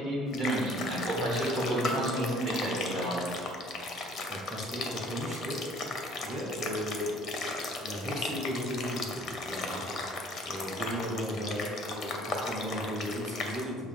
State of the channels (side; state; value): both; normal; correlation 0.55